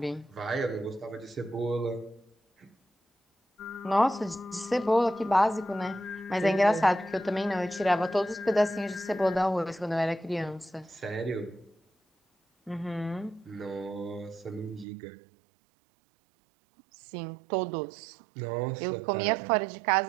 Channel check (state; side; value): drops out; left; at 14.9 s